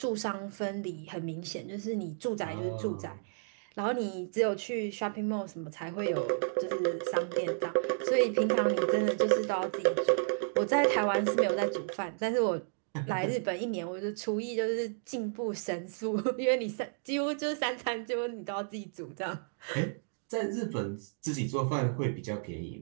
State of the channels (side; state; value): left; silent; digital silence